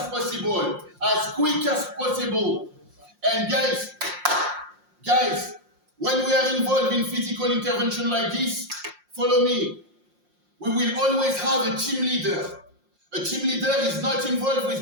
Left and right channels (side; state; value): left; late; 5.6 ms